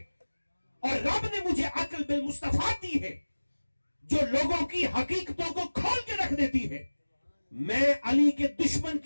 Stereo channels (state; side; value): inverted; both; correlation -1.00